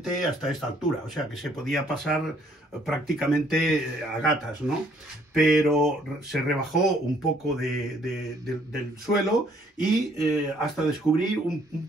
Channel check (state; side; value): normal; both; correlation 0.64